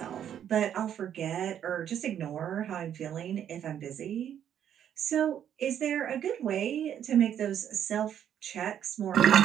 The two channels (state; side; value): quieter; left; 9.7 dB